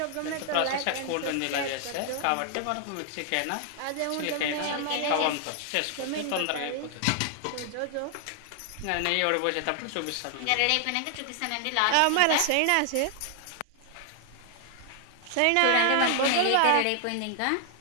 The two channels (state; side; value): different; both; correlation 0.00